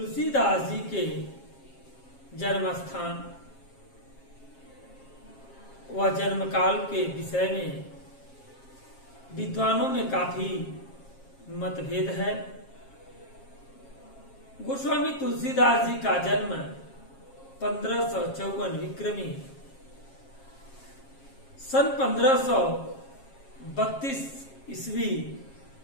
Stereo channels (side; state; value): right; late; 7.4 ms